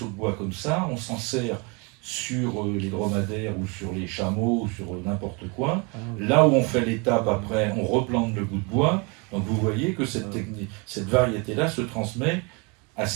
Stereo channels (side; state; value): left; quieter; 30.6 dB